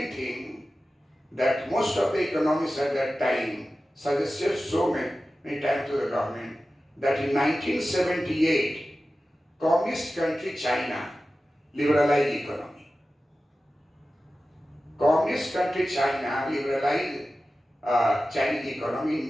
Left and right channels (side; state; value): both; normal; correlation 0.95